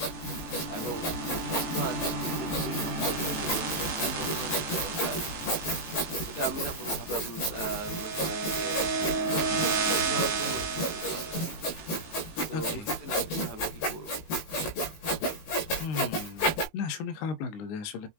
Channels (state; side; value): late; right; 19 ms